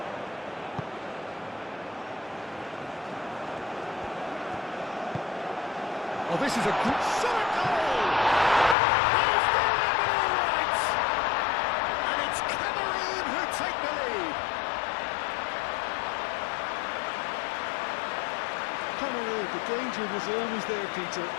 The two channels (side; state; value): right; drops out; at 8.8 s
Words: Oh, this is a good shot goal! He's delivered all right! And it's Cameroon who take the lead. Cameroon, the danger was always there, Peter.